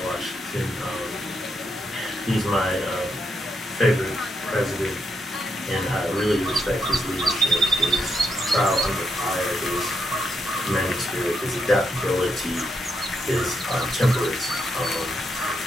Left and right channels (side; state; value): both; normal; correlation 0.79